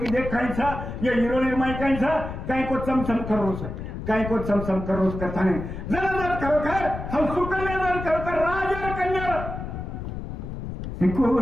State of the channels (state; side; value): noise; left; rumble, 7 dB below the sound